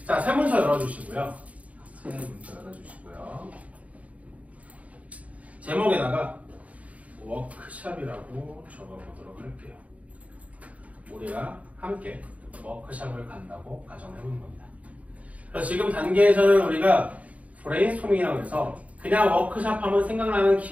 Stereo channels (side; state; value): left; late; 0.068 ms